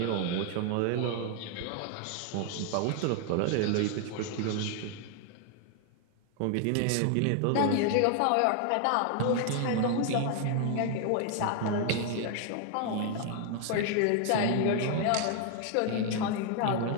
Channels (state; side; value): different; both; correlation 0.00